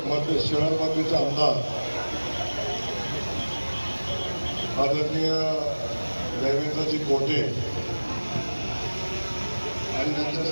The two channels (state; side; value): inverted; both; correlation -1.00